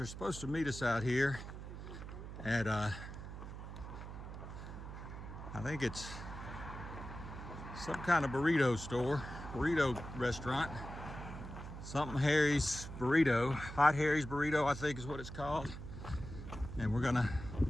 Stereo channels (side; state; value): right; noise; hum, 10 dB below the sound